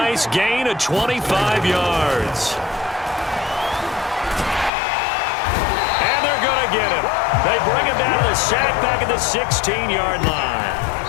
gain of 25 yards. And they're going to get him. They bring him down to the sack back at the 16-yard line.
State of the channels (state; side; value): drops out; right; at 4.7 s